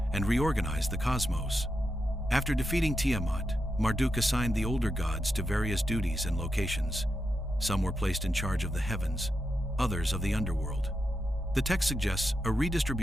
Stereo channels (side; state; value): both; normal; correlation 0.87